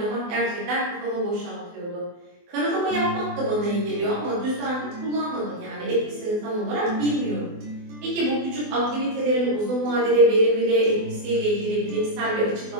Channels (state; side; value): late; left; 24 ms